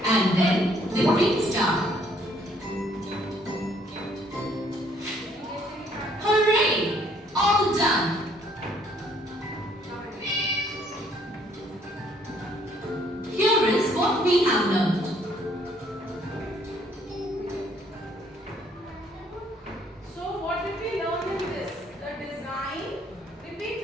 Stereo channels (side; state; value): both; normal; correlation 0.64